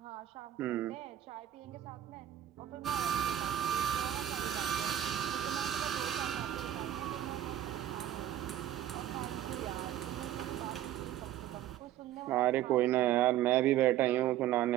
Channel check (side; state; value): left; quieter; 12.1 dB